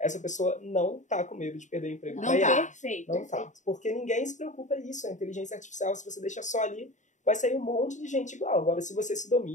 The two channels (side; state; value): right; late; 0.35 ms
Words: pessoa não tá com medo de perder o emprego para IA. Perfeito. Não tá. Porque ninguém se preocupa disso. A inteligência artificial, se você deixa só ali, vai sair um monte de gente igual. Agora, se você se